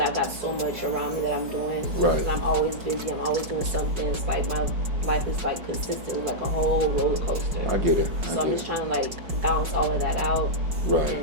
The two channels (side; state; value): left; late; 5.4 ms